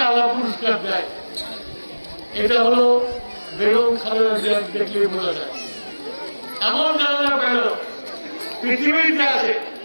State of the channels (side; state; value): both; inverted; correlation -1.00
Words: আল্লাহ পুরস্কার দেয়, এটা হলো বেগম খালেদা জিয়া দেখলেই বোঝা যায়। এমন জানাজা পেল পৃথিবীতে আছে,